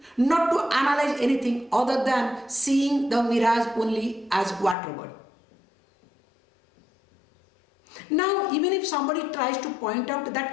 not to analyze anything other than seeing the mirage only as water body. Now, even if somebody tries to point out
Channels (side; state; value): right; drops out; at 4.8 s